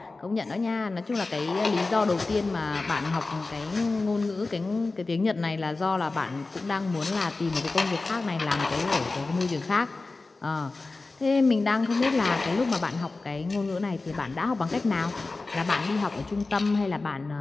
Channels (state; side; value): quieter; right; 3.5 dB